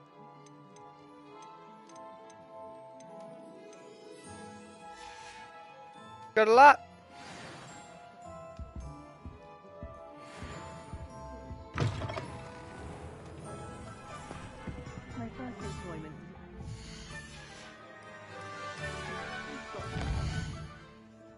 Good luck. My first employment.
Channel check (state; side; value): identical; both; correlation 1.00